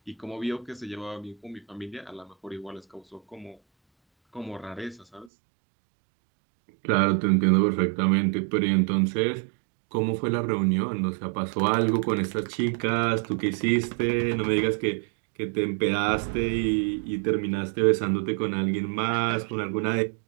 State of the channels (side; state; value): left; drops out; at 5.3 s